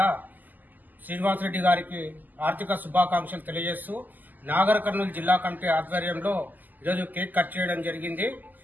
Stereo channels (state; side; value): late; left; 0.084 ms